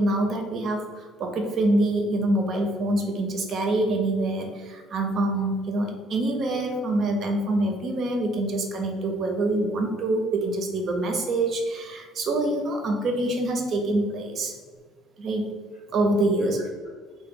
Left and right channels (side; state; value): both; normal; correlation 0.65